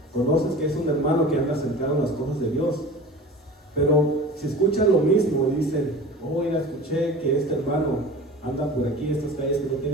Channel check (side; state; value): both; normal; correlation 0.37